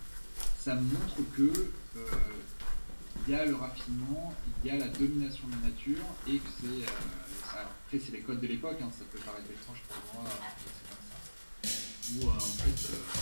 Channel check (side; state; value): both; inverted; correlation -1.00